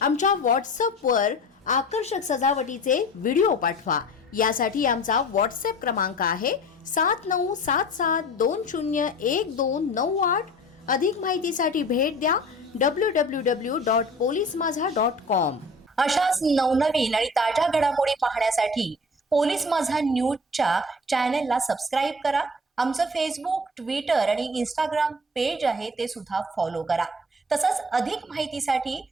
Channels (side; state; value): both; normal; correlation 0.42